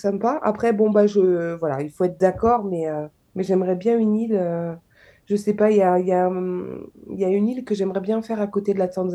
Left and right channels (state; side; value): identical; both; correlation 1.00